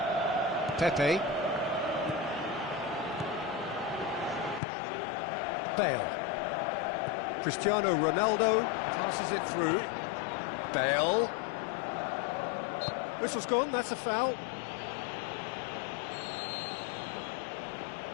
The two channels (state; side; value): drops out; right; at 4.6 s